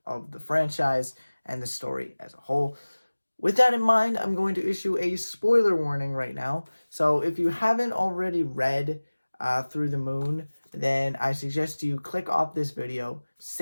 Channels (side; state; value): both; inverted; correlation -1.00